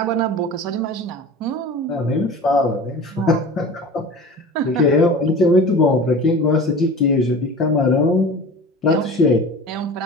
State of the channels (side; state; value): both; normal; correlation 0.37